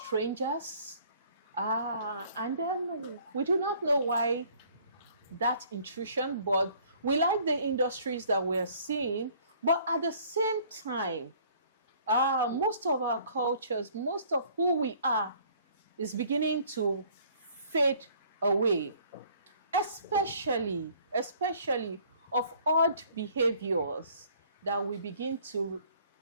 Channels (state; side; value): inverted; both; correlation -0.57